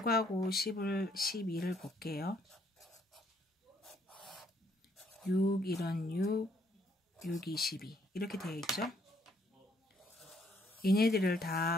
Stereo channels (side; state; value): both; normal; correlation 0.68